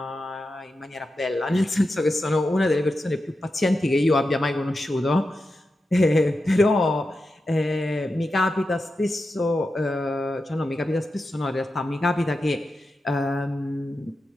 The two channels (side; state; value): both; normal; correlation 0.90